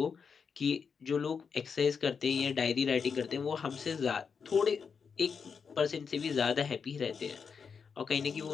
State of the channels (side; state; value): right; quieter; 6.0 dB